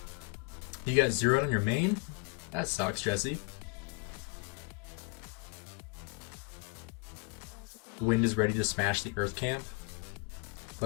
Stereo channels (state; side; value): quieter; right; 30.8 dB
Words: You got 0'd on your main? That sucks, Jesse. Wind is ready to smash the earth camp.